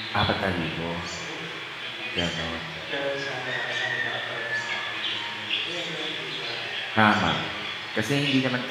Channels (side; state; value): both; identical; correlation 1.00